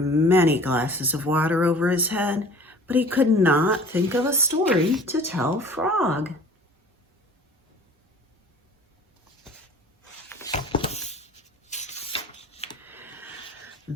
glasses of water over his head, but he could not think of a story to tell Frog.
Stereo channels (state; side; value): normal; both; correlation 0.47